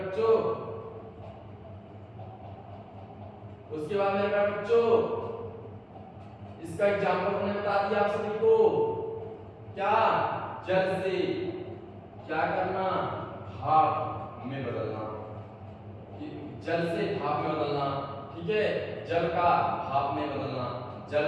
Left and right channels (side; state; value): both; identical; correlation 1.00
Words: उसके बाद मेरे बच्चों इसका एग्जाम्पल हमने बता दिया आप सभी को, क्या, जल से क्या करना, भाप में बदलना। जल से भाप में बदलना। ठीक है, जल का भाप में बदलना, जल